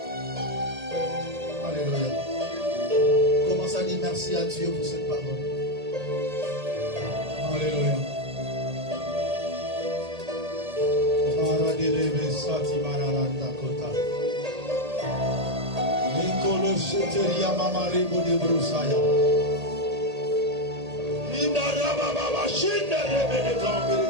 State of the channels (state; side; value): late; left; 1.8 ms